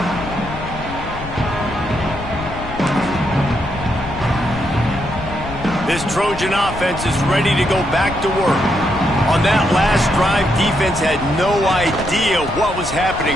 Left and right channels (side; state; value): left; noise; rumble, 11 dB below the sound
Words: This Trojan offense is ready to go back to work. On that last drive, defense had no idea what was happening,